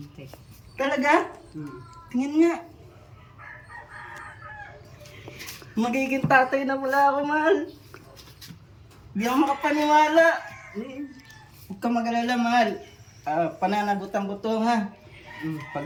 Talaga? Tingin nga. Magiging tatay na pala ako, mahal. Di ako makapaniwala. Huwag ka mag-alala, mahal. Pananagutan ko to, ha?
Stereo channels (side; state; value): both; identical; correlation 1.00